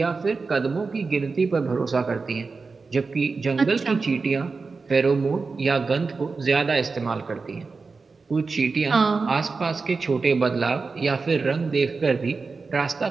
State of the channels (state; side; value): quieter; left; 4.4 dB